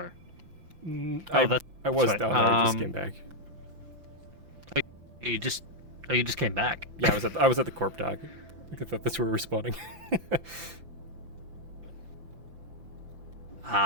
I was right. down there. I just came back. You just came back. Yeah, I was at the corp dock. I thought that's where we were spawning.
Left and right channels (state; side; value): late; left; 5.9 ms